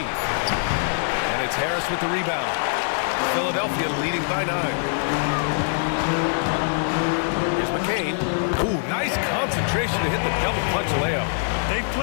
And it's Harris with the rebound. Philadelphia leading by 9. Here's McCain. Ooh, nice concentration to hit the double clutch layup. They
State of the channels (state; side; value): silent; right; digital silence